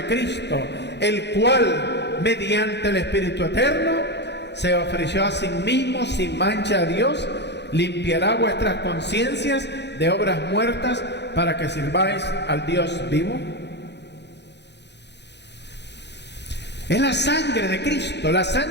Cristo, el cual mediante el Espíritu Eterno se ofreció a sí mismo sin mancha a Dios, limpiará vuestras conciencias de obras muertas para que sirváis al Dios vivo. Es la sangre de Cristo, la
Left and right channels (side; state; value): right; late; 0.50 ms